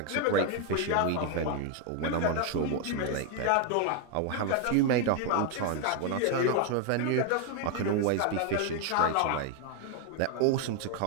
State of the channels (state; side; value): different; both; correlation 0.01